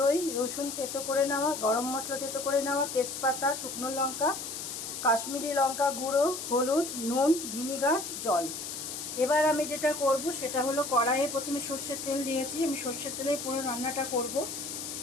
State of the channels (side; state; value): left; noise; hiss, 7 dB below the sound